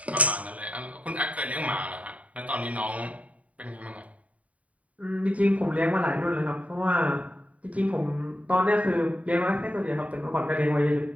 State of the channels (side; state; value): left; late; 0.068 ms